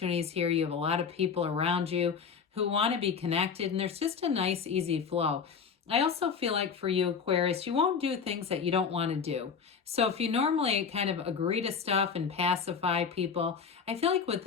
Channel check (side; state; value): right; quieter; 6.1 dB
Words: here. You have a lot of people around you who want to be connected, and there's just a nice, easy flow. I also feel like for you, Aquarius, you won't do things that you don't want to do. So if you normally kind of agree to stuff and pacify people, I feel like with